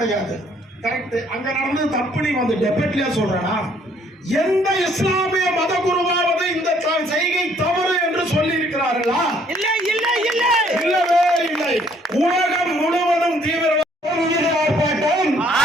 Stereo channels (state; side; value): normal; both; correlation 0.64